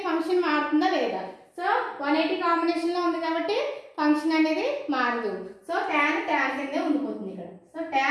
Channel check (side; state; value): both; identical; correlation 1.00